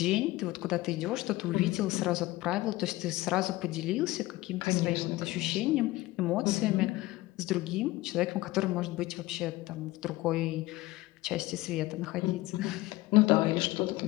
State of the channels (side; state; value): right; quieter; 18.8 dB